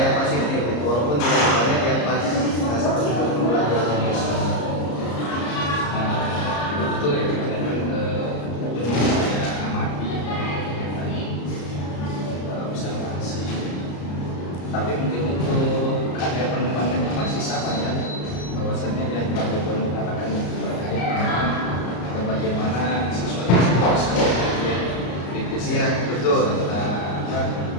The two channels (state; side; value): late; right; 34 ms